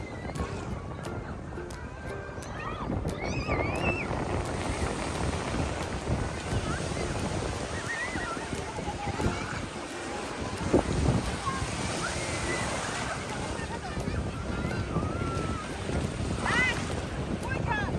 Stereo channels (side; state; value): both; identical; correlation 1.00